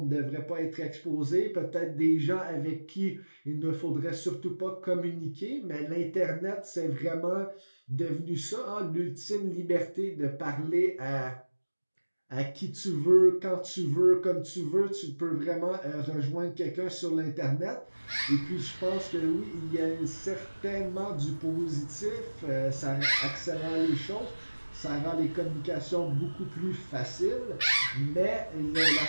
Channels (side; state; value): both; inverted; correlation -1.00